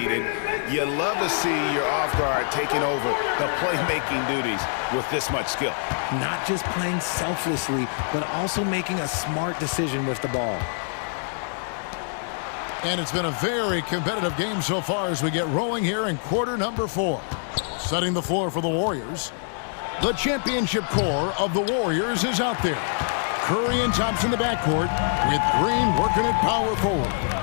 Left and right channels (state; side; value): silent; right; 62 dB below the other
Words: and you love to see your off guard taking over the playmaking duties with this much skill. Not just playing selflessly, but also making a smart decision with the ball. And it's been a very competitive game so far as we get rolling here in quarter number 4. Setting the floor for the Warriors. The championship core of the Warriors is out there. Curry and Thompson in the backcourt with Green working at power forward.